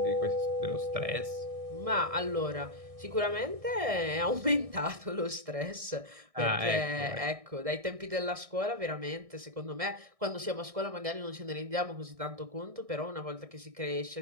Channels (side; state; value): left; late; 1.6 ms